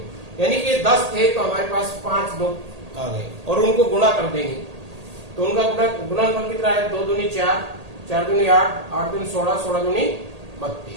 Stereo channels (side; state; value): left; late; 1.8 ms